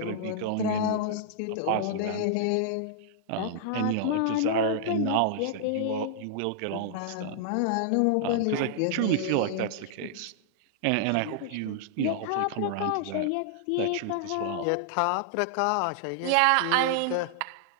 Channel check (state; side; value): different; both; correlation -0.01